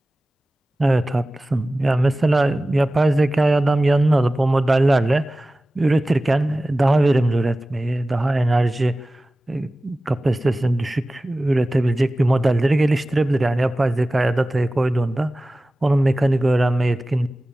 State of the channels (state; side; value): normal; both; correlation 0.97